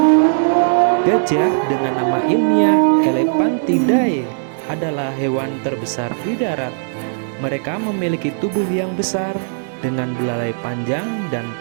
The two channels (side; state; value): left; silent; digital silence